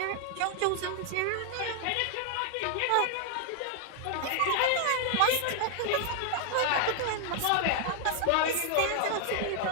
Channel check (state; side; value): different; both; correlation 0.00